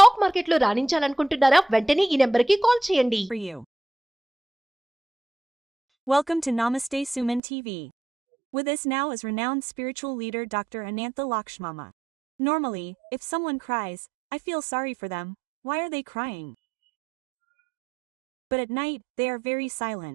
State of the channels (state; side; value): drops out; left; at 7.4 s